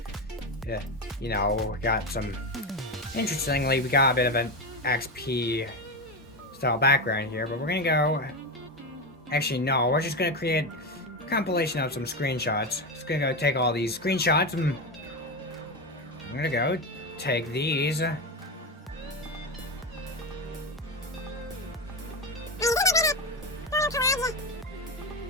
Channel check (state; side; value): normal; both; correlation 0.16